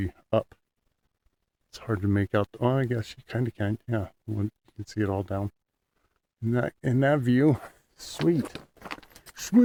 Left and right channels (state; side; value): identical; both; correlation 1.00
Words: up. It's hard to make out. Oh, I guess you kind of can. Yeah, you can see it all down. In that view, sweet.